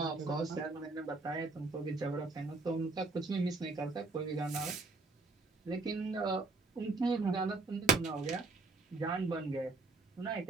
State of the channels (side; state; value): left; quieter; 3.7 dB